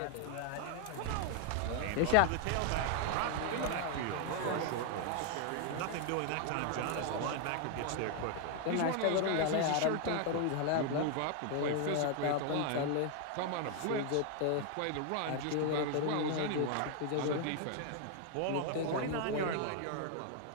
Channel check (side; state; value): both; different; correlation 0.00